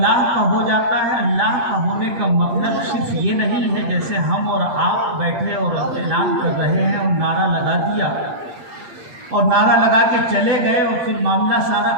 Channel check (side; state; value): left; late; 7.6 ms